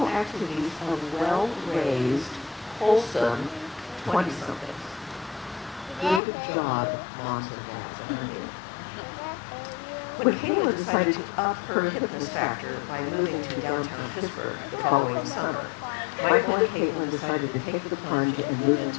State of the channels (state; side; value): drops out; right; at 6.2 s